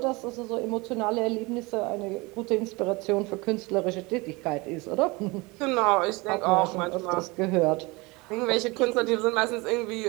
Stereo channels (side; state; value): left; quieter; 24.9 dB